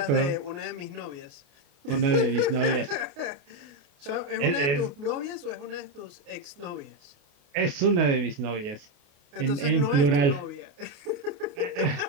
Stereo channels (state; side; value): late; left; 28 ms